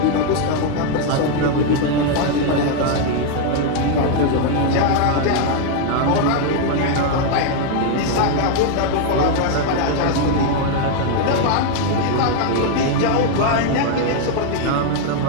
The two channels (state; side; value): different; both; correlation 0.01